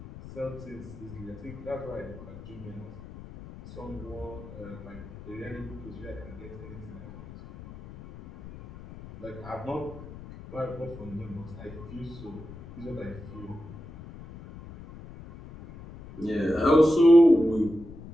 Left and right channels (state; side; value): noise; left; rumble, 15 dB below the sound